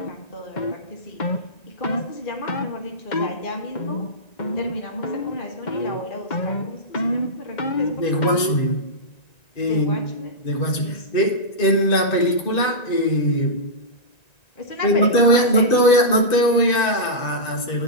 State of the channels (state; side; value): late; right; 1.9 ms